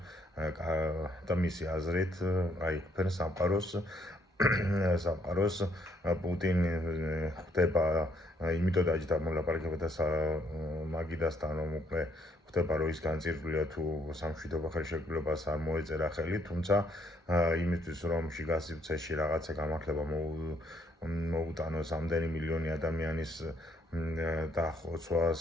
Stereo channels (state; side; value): normal; both; correlation 0.69